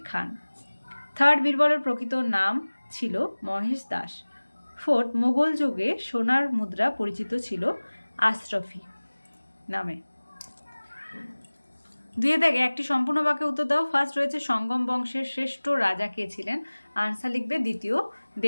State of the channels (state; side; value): inverted; both; correlation -1.00